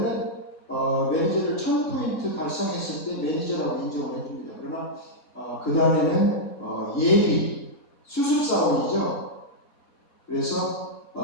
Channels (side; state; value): both; normal; correlation -0.06